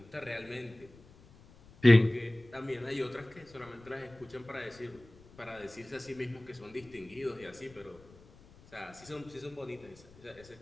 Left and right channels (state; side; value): noise; left; rumble, 24 dB below the sound